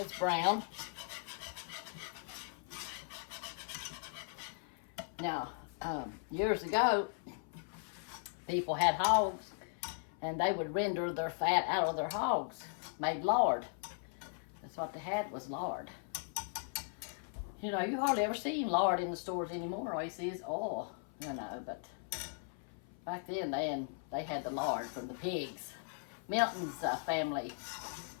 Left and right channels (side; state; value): right; silent; 52 dB below the other